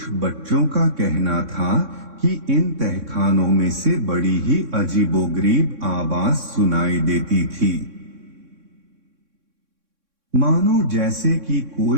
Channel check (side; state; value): left; late; 3.6 ms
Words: बच्चों का कहना था कि इन तहखानों में से बड़ी ही अजीबोगरीब आवाज सुनाई देती थी, मानो जैसे कि